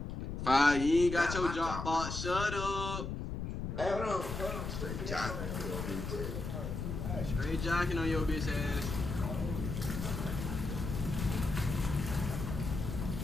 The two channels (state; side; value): noise; left; rumble, 5 dB below the sound